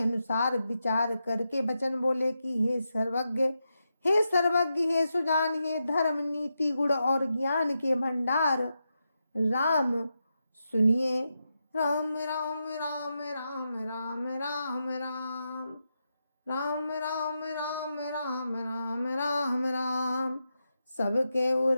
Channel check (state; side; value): inverted; both; correlation -0.87